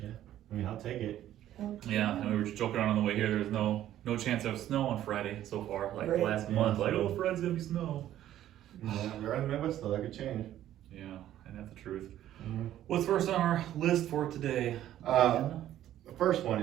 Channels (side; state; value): left; quieter; 12.4 dB